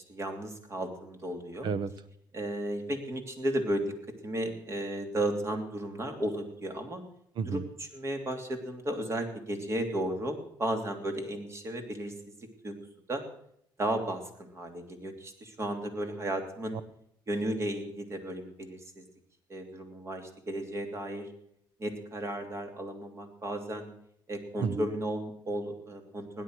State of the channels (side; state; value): both; normal; correlation 0.72